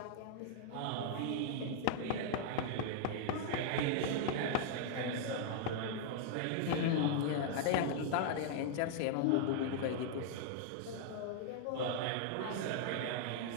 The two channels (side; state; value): both; different; correlation -0.01